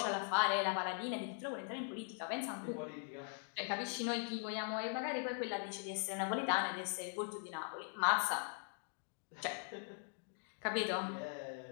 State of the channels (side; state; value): right; silent; 50 dB below the other